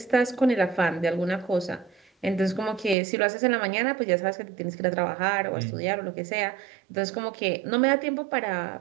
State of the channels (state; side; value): drops out; left; at 3.0 s